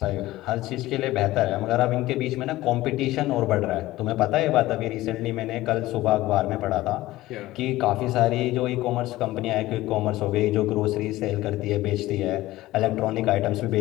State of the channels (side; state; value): right; quieter; 17.0 dB